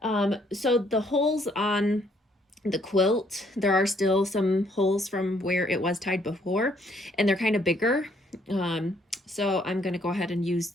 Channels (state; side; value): normal; both; correlation 0.67